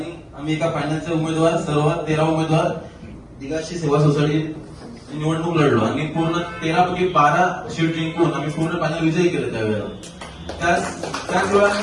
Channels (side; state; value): both; identical; correlation 1.00